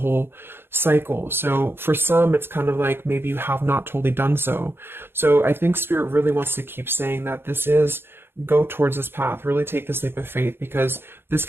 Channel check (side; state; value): left; late; 0.11 ms